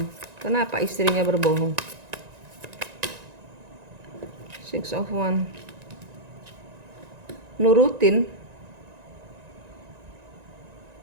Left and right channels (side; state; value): left; late; 1.9 ms